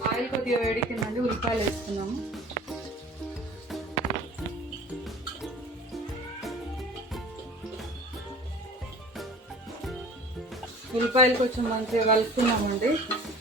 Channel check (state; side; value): normal; both; correlation 0.44